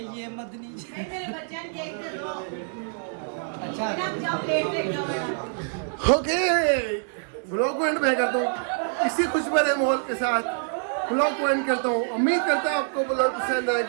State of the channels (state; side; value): silent; left; digital silence